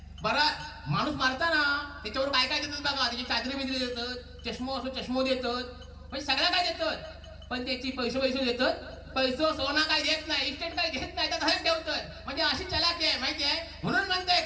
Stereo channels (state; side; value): identical; both; correlation 1.00